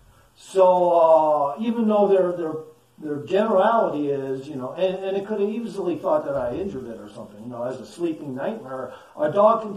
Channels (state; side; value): identical; both; correlation 1.00